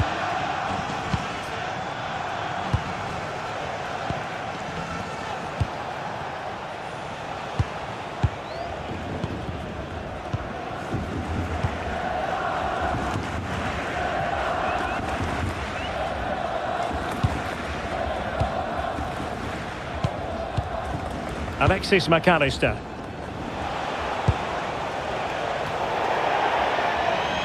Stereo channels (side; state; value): both; identical; correlation 1.00